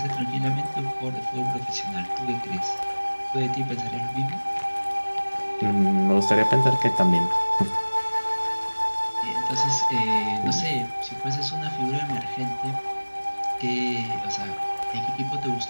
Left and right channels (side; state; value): both; inverted; correlation -1.00